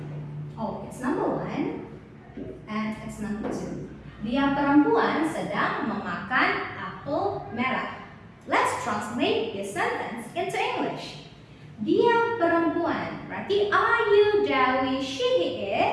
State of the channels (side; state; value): both; identical; correlation 1.00